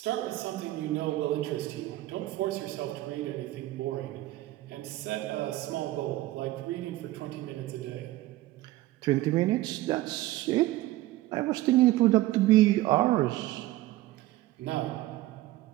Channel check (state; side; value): quieter; left; 16.8 dB